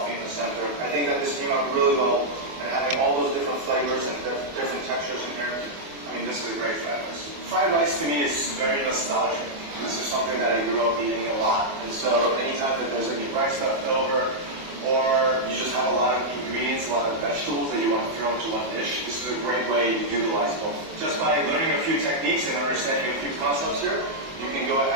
in the center. I think that this came out really well, and having all those different flavors and different textures in here, I mean, this is a great fried rice. Fried rice to me is very nostalgic. This is something that I grew up eating a lot, and so anytime that there's any rice left over, or you just have a lot of ingredients, a lot of vegetables that you want to throw into one dish, this is a great way to utilize both. Just by learning a few techniques and understanding a few concepts here, you can go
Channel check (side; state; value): left; late; 24 ms